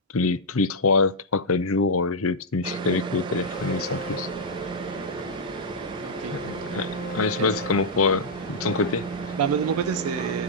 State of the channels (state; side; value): normal; both; correlation -0.06